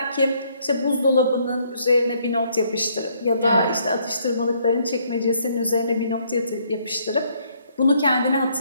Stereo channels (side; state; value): both; inverted; correlation -0.68